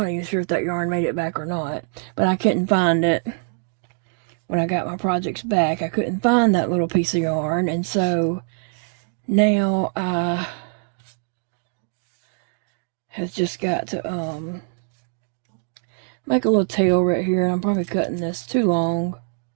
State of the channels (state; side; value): silent; left; 56 dB below the other